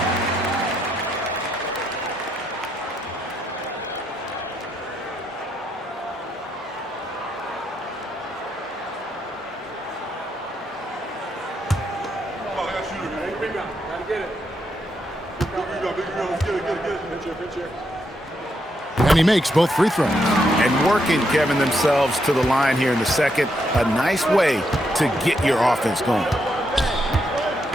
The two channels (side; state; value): both; normal; correlation 0.79